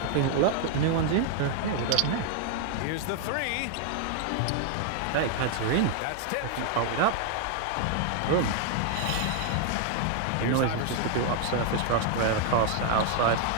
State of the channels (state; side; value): different; both; correlation 0.00